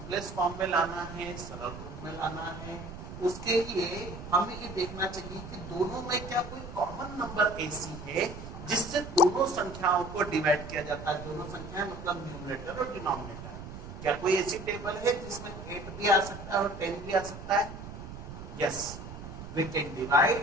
फॉर्म में लाना है, सरल रूप में लाना है। उसके लिए हमें ये देखना चाहिए कि दोनों में क्या कोई कॉमन नंबर ऐसी है जिससे दोनों संख्याओं को डिवाइड किया जाता है। दोनों संख्याएं मतलब न्यूमरेटर और डिनोमिनेटर। क्या कोई ऐसी टेबल है जिसमें 8 भी आ सकता है और 10 भी आ सकता है? Yes, we can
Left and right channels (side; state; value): right; noise; rumble, 11 dB below the sound